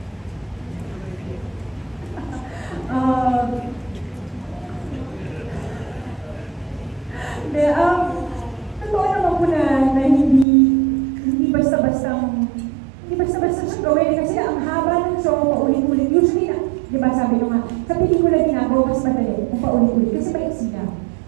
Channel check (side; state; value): left; drops out; at 10.5 s